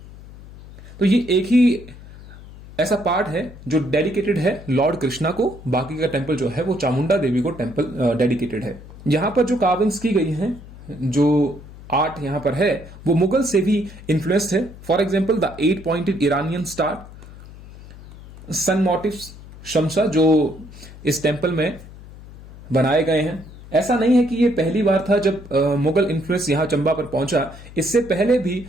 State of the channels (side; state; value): left; noise; hum, 18 dB below the sound